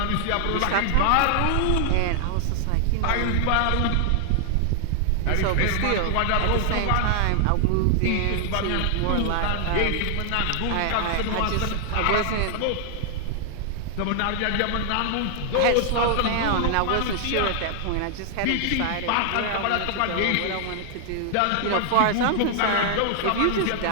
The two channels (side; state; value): both; different; correlation 0.00